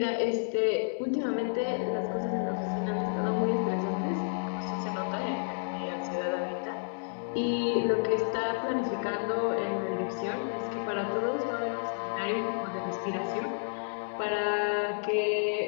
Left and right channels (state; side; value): silent; right; 57 dB below the other